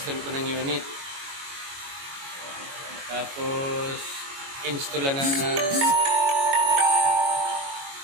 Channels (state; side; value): late; left; 22 ms